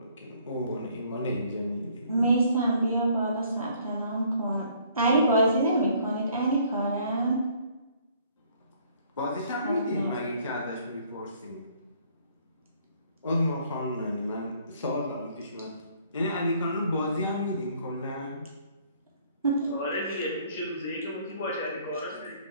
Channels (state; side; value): inverted; both; correlation -0.61